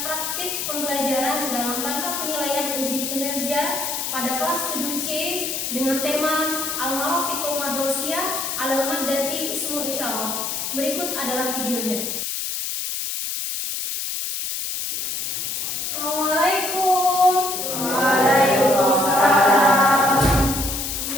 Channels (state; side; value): noise; left; hiss, 3 dB below the sound